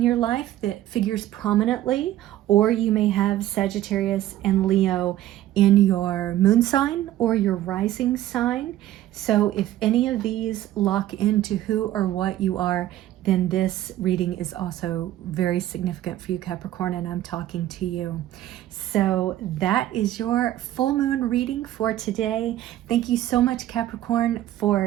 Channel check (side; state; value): left; quieter; 13.6 dB